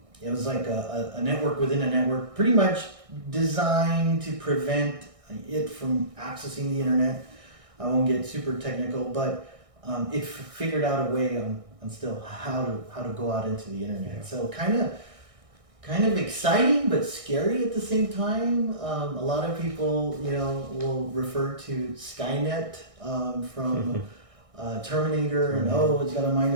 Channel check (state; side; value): late; left; 1.6 ms